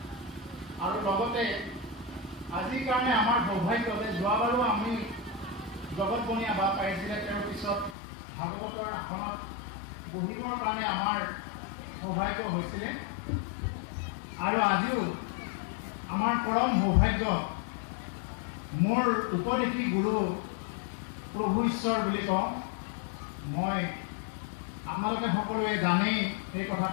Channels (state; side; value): drops out; right; at 8.0 s